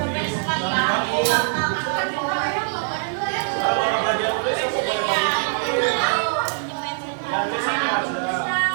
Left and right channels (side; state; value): left; silent; 64 dB below the other